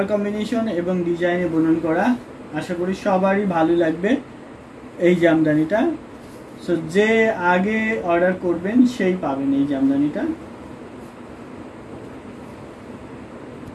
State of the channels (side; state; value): both; identical; correlation 1.00